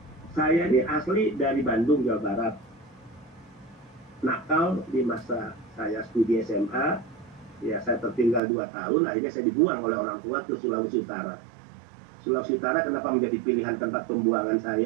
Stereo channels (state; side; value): drops out; left; at 8.4 s